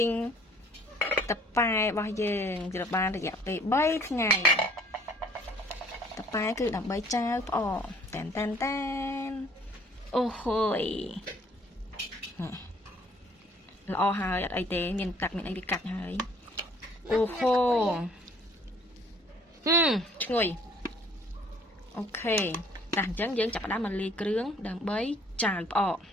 តប៉ែរបស់យើងជិតបានរយៈពេល3ថ្ងៃតប៉ែគឺដើម្បីចៅប្រអប់តែនអូហូយល្អហើយអត់អីទេមានទឹកមានអីវាកាត់ហើយអូហូឈ្ងុយអូខេតែអញ្ចឹងយើងចាប់ផ្ដើមមកលាយគ្រឿងដើម្បីចាវផ្អក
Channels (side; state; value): both; normal; correlation 0.57